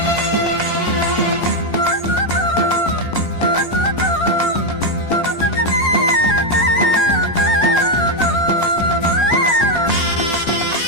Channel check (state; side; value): late; right; 10 ms